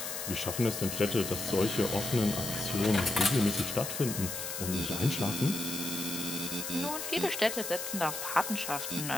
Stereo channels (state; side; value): noise; left; hiss, 5 dB below the sound